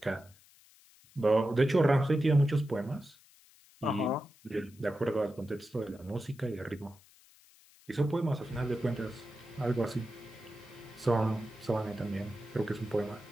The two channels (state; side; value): noise; left; hiss, 27 dB below the sound